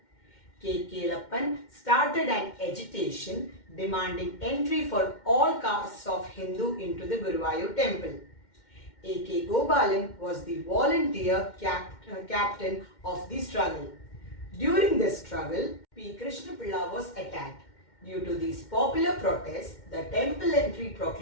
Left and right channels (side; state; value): right; late; 2.1 ms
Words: K. Kelappan started an agitation demanding entry for all castes of Hindu into the Guruvayur temple. A. K. Gopalan was the volunteer captain of the struggle. During this struggle, P. Krishnapilla was attacked. Due to these popular protests, the temple entry